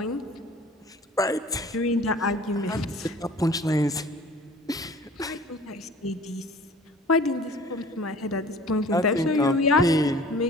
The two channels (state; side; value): normal; both; correlation 0.47